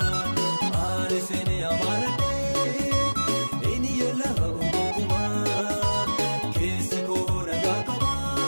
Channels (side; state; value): both; inverted; correlation -1.00